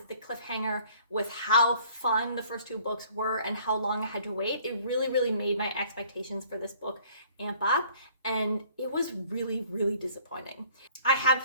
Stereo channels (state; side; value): inverted; both; correlation -0.56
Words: the cliffhanger, with how fun the first two books were and how long I had to wait, it really, really made my expectations for this book amp up, and it was really, really disappointing. I have